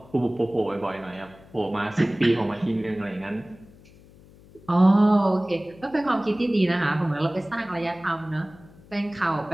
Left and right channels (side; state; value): left; noise; hum, 24 dB below the sound